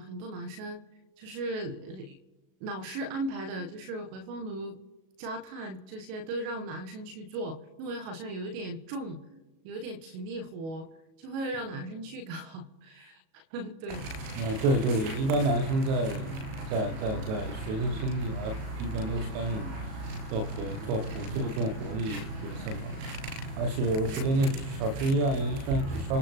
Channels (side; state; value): left; late; 37 ms